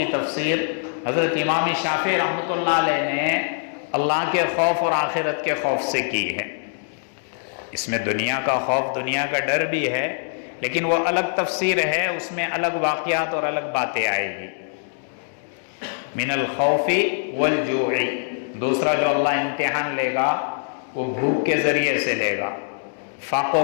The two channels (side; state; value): right; silent; 63 dB below the other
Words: تفسیر حضرت امام شافعی رحمۃ اللہ علیہ نے اللہ کے خوف اور آخرت کے خوف سے کی ہے۔ اس میں دنیا کا خوف، دنیا کا ڈر بھی ہے، لیکن وہ الگ تفسیر ہے، اس میں الگ واقعات اور الگ باتیں آئے گی۔ من الخوف والجوع، دوسرا جو اللہ امتحان لے گا وہ بھوک کے ذریعے سے لے گا،